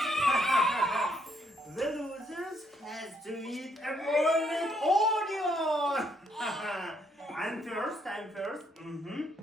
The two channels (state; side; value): normal; both; correlation 0.72